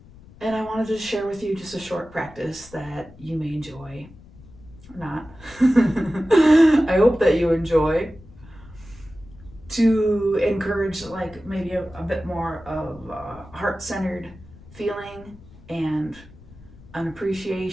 And I wanted to share with you just a short practice that you may enjoy or not. I hope that you enjoy, to encourage like maybe a bit more of a heart-centered feeling and an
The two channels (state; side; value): noise; left; rumble, 21 dB below the sound